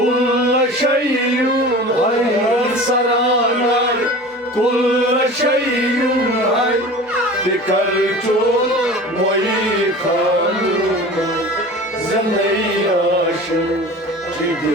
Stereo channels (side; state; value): both; normal; correlation 0.38